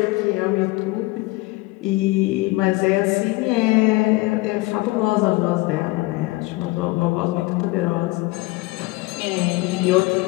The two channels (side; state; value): right; quieter; 21.6 dB